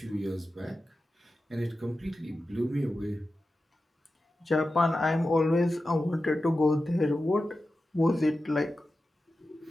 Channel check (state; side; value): normal; both; correlation 0.93